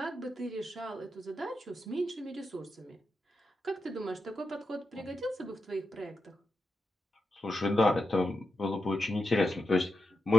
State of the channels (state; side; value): normal; both; correlation 0.87